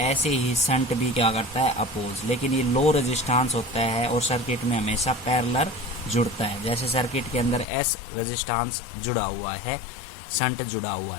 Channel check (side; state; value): right; drops out; at 7.7 s